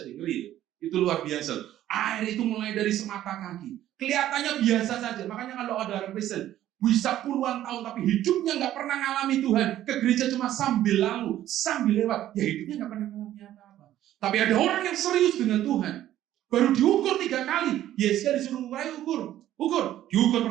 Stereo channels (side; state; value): left; quieter; 12.8 dB